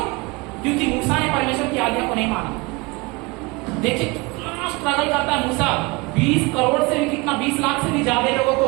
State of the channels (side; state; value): left; quieter; 25.7 dB